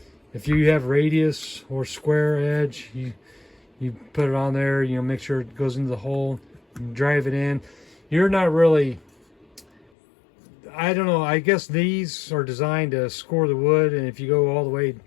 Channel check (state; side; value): drops out; right; at 9.9 s